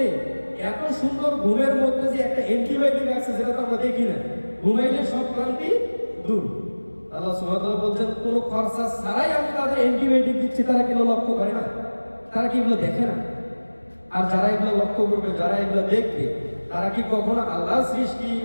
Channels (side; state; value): both; inverted; correlation -1.00